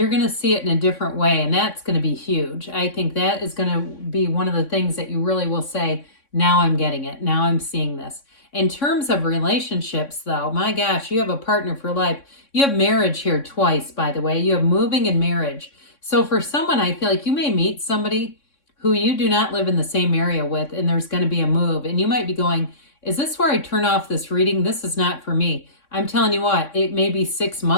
going to see it in a different way, and that's going to be huge. I think that is going to be one of the things that you really will say, now I'm getting it. Now I'm seeing this. In terms of relationships, though, my gosh, you have a partner for life. You have marriage here twice, by the way. You have moving and marriage. So for someone, I feel like you may meet somebody who you do not live in the same area with, and there's going to be a move. And you might be going, is this where I turn off this reading? This is not for me. I'm telling you what, it may be 6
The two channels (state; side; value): late; right; 3.6 ms